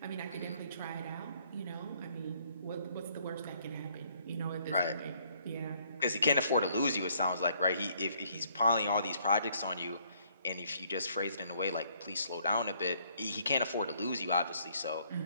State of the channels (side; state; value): both; inverted; correlation -0.66